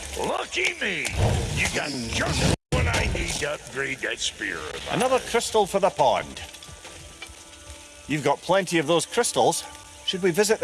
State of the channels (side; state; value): both; identical; correlation 1.00